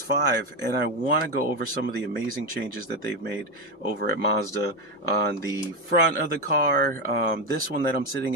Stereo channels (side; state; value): both; normal; correlation 0.11